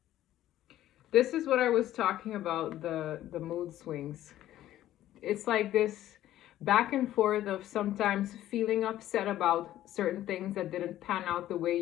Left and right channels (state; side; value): quieter; right; 13.3 dB